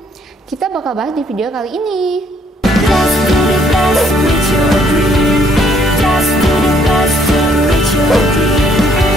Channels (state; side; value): normal; both; correlation 0.66